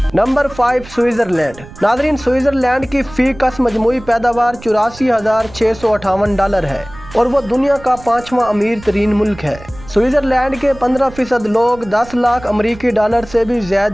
Number 5 Switzerland. नाज़रीन, स्विट्जरलैंड की फी का मजमूई पैदावार $84,658 है और वो दुनिया का 5वां अमीर तरीन मुल्क है। स्विट्जरलैंड के 15% लोग $10 लाख अमरीकी डॉलर से भी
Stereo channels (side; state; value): right; noise; rumble, 18 dB below the sound